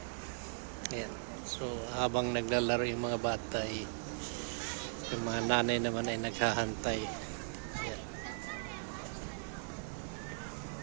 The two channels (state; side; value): silent; left; 52 dB below the other